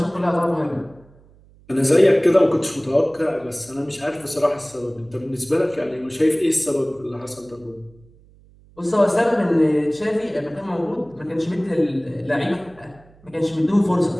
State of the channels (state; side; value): noise; right; hum, 27 dB below the sound